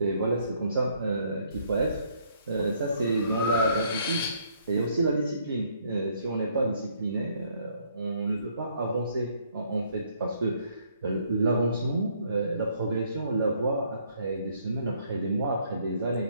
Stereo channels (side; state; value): both; inverted; correlation -0.66